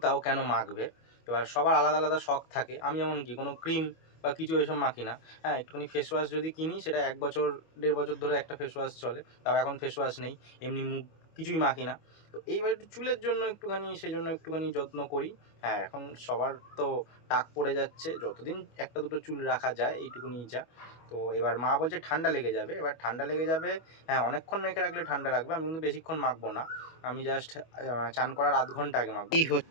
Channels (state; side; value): late; right; 25 ms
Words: তাও কেন মাখবে। এবার সবার আলাদা আলাদা শখ থাকে, আমি এমন কি কোনো ক্রিম বা কিছু এসব মাখি না। হ্যাঁ, একটুখানি ফেস ওয়াশ যদি কিনি, সেটা 1 বছর 1.5 বছর ধরে একটা ফেস ওয়াশ চলে, তাও এখন ফেস ওয়াশ নেই, এমনি মুখ কিছুই মাখি না। তো এইবার একটু চুলের জন্য একটুখানি, সেই জন্য একটুখানি যত্ন করি। হ্যাঁ, এখন সবার তো টাক পড়ে যাচ্ছে, যতদিন একটা দুটো চুল রাখা যায় এইটুকুনি যা। তো এবার মা বলছে ঠান্ডা লেগে যাবে, এবার ঠান্ডা লেগে যাবে। হ্যাঁ, অনেকক্ষণ মেখে রাখলে ঠান্ডা লাগবে, আমি কিন্তু বেশিক্ষণ মাখবো না, আমি জাস্ট চান করার আধ ঘন্টা আগে মাখবো। এই